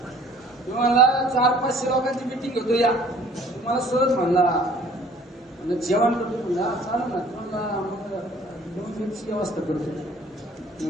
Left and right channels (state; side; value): normal; both; correlation 0.53